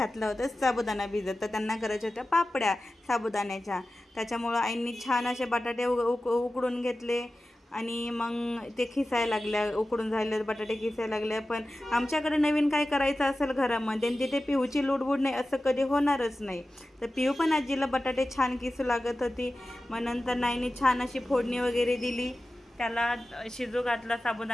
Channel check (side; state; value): both; normal; correlation 0.95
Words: होतं साबुदाणा भिजत. तर त्यांना करायच्या होत्या पापड्या साबुदाण्याच्या. त्याच्यामुळं आईने छान असे बटाटे उकडून घेतले आणि मग ते खिसायला लागल्या. उकडून झाले बटाटे खिसायला लागले. पण आमच्याकडे नवीन काय करायचं असेल घरामध्ये आणि तिथे पिऊची लुडबुड नाही असं कधी होणारच नाही. तर पिऊ पण आजीला बटाटे छान किसू लागत होती. मग नंतर नाईने छान अशी फोडणी वगैरे दिली, त्याला शिजू घातला